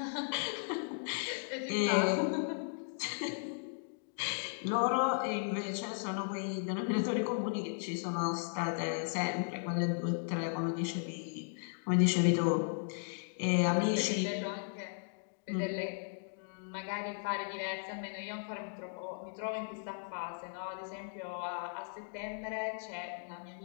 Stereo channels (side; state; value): right; silent; digital silence